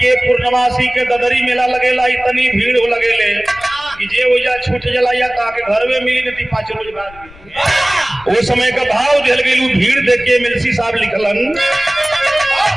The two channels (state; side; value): noise; left; rumble, 22 dB below the sound